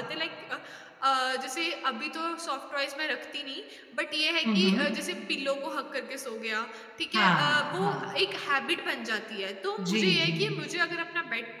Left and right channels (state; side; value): identical; both; correlation 1.00